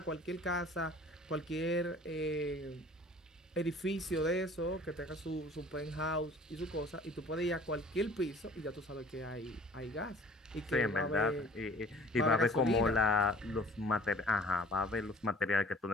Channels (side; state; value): both; normal; correlation 0.50